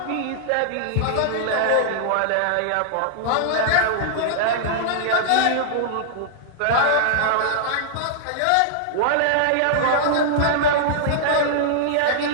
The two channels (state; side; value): different; both; correlation -0.01